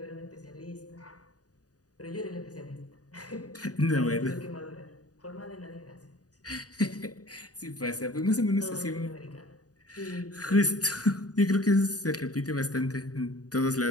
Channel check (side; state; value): right; late; 0.67 ms